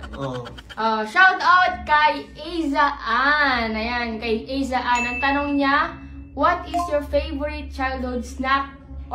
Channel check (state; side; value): identical; both; correlation 1.00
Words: Shout out kay Aiza Ann. Ayan, kay Aiza Ann. Ang tanong niya, what is your favorite childhood snack